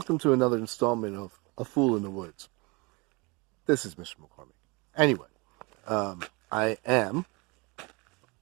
to another installment of A Fool in the Woods. This is Mr. McCormick. Anyway, I am,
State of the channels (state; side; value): quieter; left; 27.3 dB